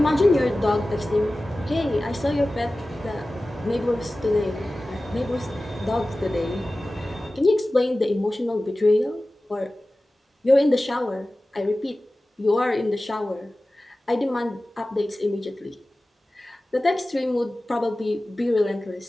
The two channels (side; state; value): both; normal; correlation 0.96